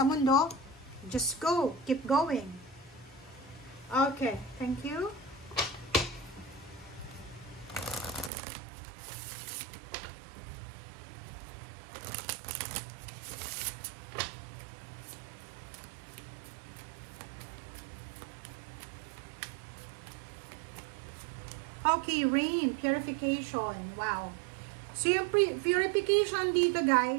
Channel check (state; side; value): drops out; left; at 8.3 s